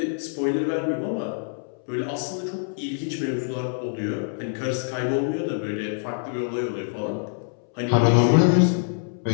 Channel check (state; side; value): silent; right; 62 dB below the other